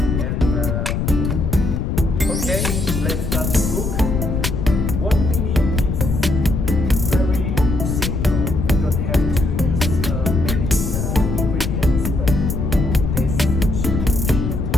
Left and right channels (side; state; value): left; noise; rumble, 1 dB below the sound